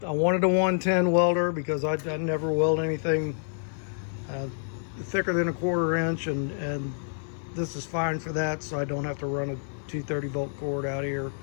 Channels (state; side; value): silent; right; 56 dB below the other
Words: a 110 welder because I never weld anything thicker than a 1/4 inch, and this is fine for that, so I don't have to run a 230 volt cord out here.